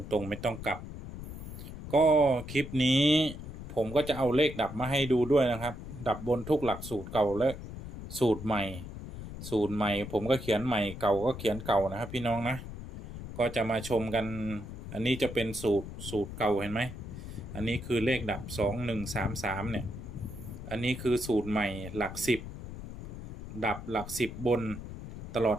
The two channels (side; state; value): left; noise; rumble, 10 dB below the sound